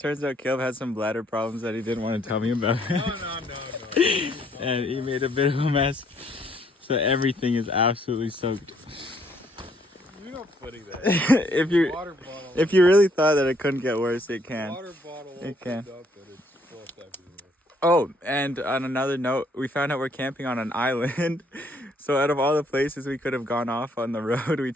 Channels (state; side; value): normal; both; correlation 0.67